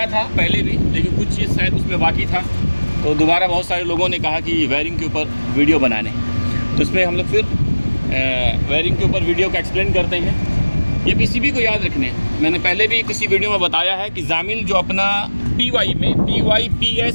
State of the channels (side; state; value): both; inverted; correlation -1.00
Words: था पहले भी, लेकिन कुछ चीज़ शायद उसमें बाकी था, तो दोबारा बहुत सारे लोगों ने कहा कि वायरिंग के ऊपर वीडियो बनाने, तो इसमें हम लोग फिर वायरिंग के ऊपर वीडियो का एक्सप्लेन करते हैं। ये PCB को याद रखने, मैंने पहले भी किसी वीडियो में बताया है कि जामिल जो अपना PY में PY,